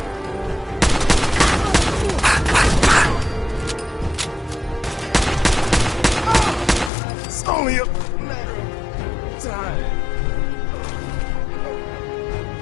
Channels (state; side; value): drops out; right; at 6.9 s